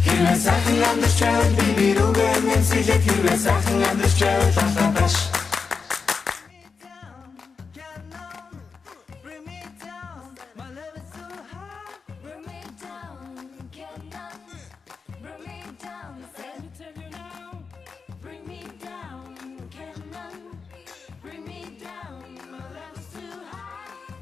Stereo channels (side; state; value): right; quieter; 5.1 dB